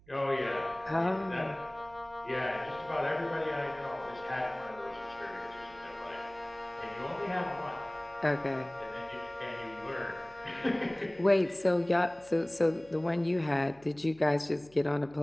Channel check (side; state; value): right; noise; hum, 26 dB below the sound